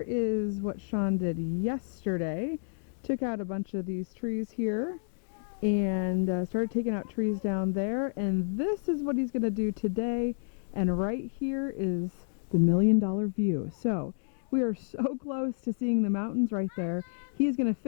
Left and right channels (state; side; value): silent; right; digital silence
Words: is what Sean did yesterday. Took out a bunch of these trees here and started taking out trees down there, and this is what he's going to do today. And right here is the $1 million view. So we are so close to seeing the mountains right there. He's going to